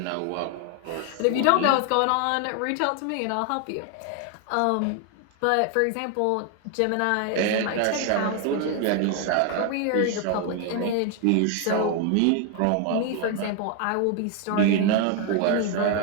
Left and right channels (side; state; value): both; different; correlation 0.01